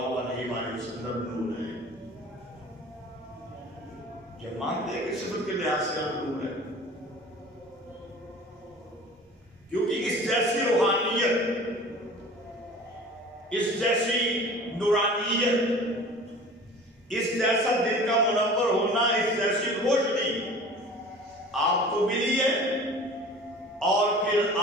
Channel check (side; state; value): both; normal; correlation 0.43